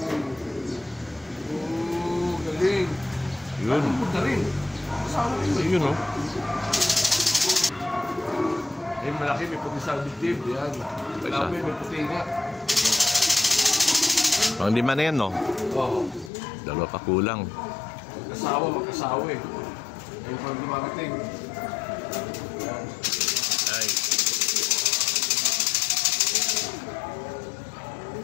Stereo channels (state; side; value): drops out; right; at 16.3 s